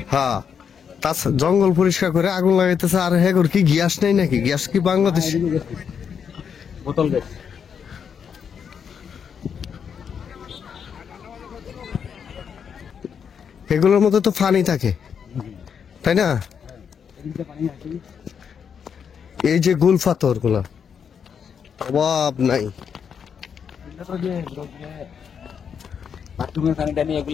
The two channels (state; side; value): quieter; right; 7.2 dB